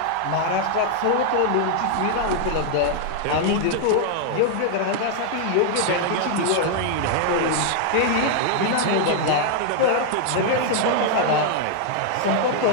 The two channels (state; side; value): different; both; correlation 0.00